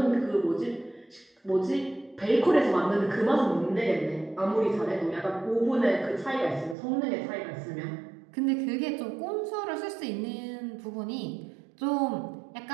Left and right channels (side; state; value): left; drops out; at 6.8 s